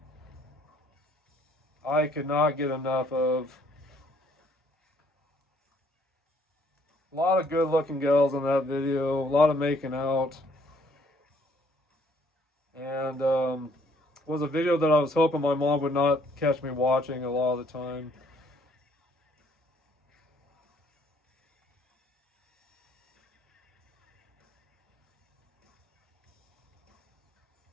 I could not get enough of. A lot of good looking girls in that video. A lot of making out. And was a video that I was hoping my mom would not catch me watching a lot of the time.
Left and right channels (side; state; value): both; normal; correlation 0.64